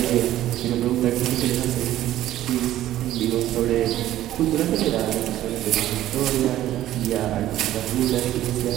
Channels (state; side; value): quieter; left; 13.5 dB